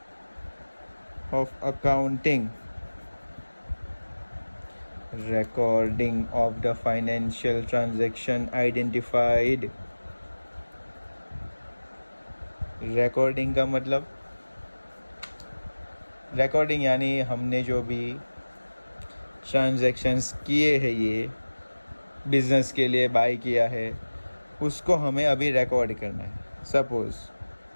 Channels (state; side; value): inverted; both; correlation -1.00